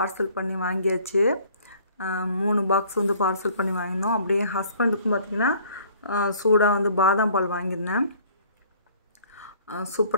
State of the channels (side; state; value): both; inverted; correlation -0.55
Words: பண்ணி வாங்கியாச்சு. 3 பாக்ஸ் வந்து பார்சல் பண்ணி வாங்கியிருந்தோம். அப்படியே ஹஸ்பண்டுக்கும் பார்த்திங்கன்னா சூடாக வந்து பாதாம் பால் வாங்கியிருந்தேன்.